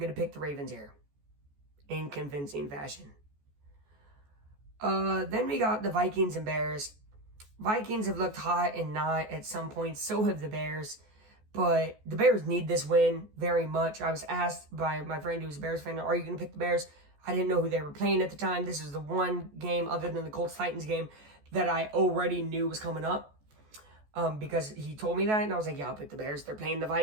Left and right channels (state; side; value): late; left; 14 ms